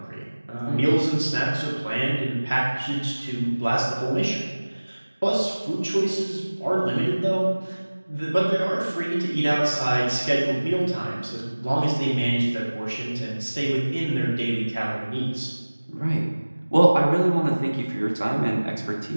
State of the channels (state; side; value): inverted; both; correlation -1.00